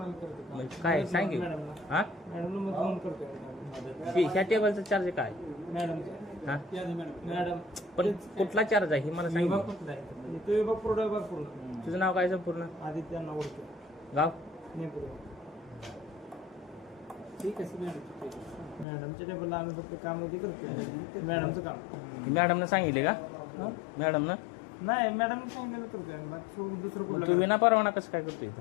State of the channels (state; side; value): drops out; right; at 18.9 s